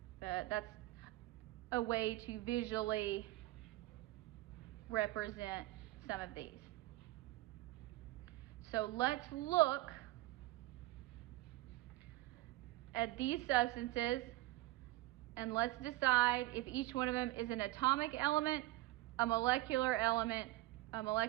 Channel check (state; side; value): quieter; left; 18.0 dB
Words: But that's a way to visually represent some of these. So let's look at these substances and let's decide if each one of them is an atomic element, a molecular